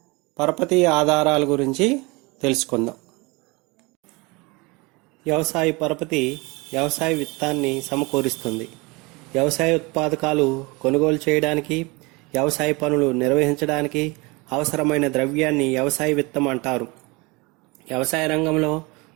పరపతి ఆధారాల గురించి తెలుసుకుందాం. వ్యవసాయ పరపతి వ్యవసాయ విత్తాన్ని సమకూరుస్తుంది. వ్యవసాయ ఉత్పాదకాలు కొనుగోలు చేయడానికి, వ్యవసాయ పనులు నిర్వహించడానికి అవసరమైన ద్రవ్యాన్ని వ్యవసాయ విత్తం అంటారు. వ్యవసాయ రంగంలో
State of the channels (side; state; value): left; quieter; 25.8 dB